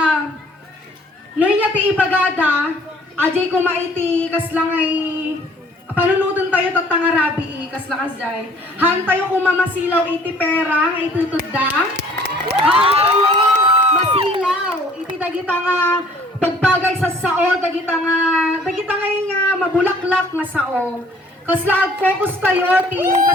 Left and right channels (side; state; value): both; normal; correlation 0.56